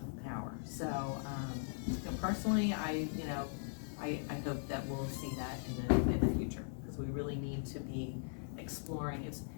power. So, personally, I hope that we'll see that in the future, because we really need to be exploring. It's,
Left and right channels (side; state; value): right; silent; 51 dB below the other